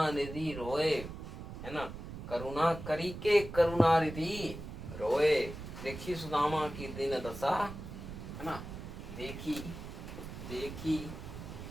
निधि रोए। है ना, करुणा करी के करुणा निधि रोए। देखी सुदामा की दिन दशा, है ना। देखी देखी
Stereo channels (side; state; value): right; noise; rumble, 10 dB below the sound